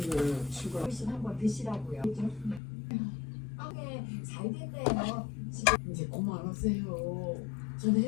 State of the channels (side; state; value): right; drops out; at 2.6 s